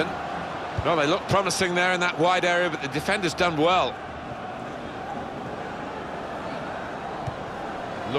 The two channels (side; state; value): both; identical; correlation 1.00